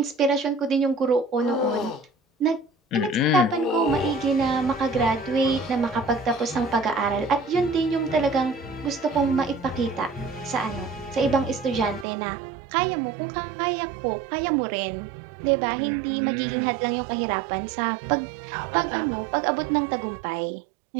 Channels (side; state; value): left; drops out; at 12.1 s